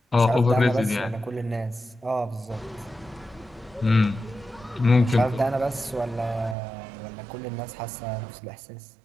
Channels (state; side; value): drops out; left; at 6.6 s